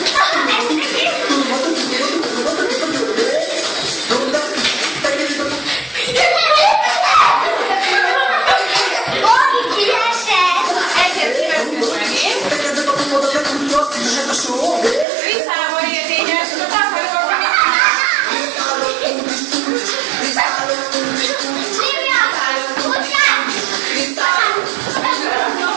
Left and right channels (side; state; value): left; drops out; at 15.1 s